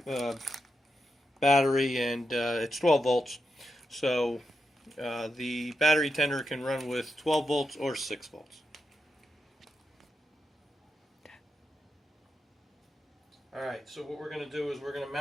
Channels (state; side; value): normal; both; correlation 0.87